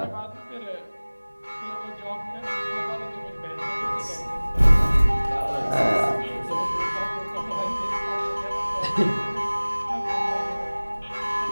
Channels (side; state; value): both; inverted; correlation -1.00